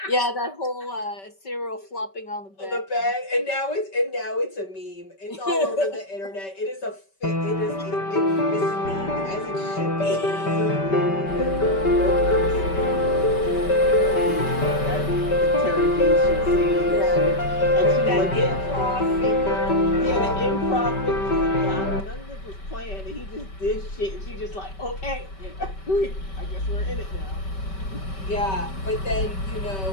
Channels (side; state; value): right; late; 5.2 ms